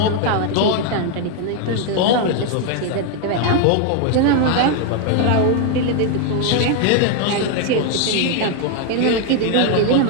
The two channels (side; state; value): both; different; correlation 0.00